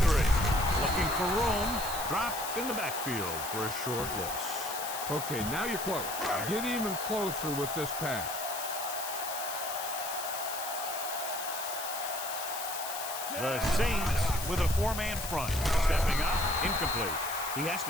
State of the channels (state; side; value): noise; left; hiss, 7 dB below the sound